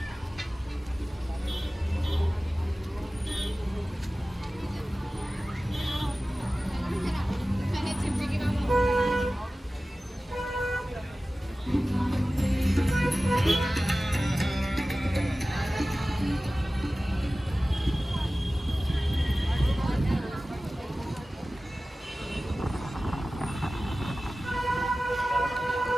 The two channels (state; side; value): normal; both; correlation 0.96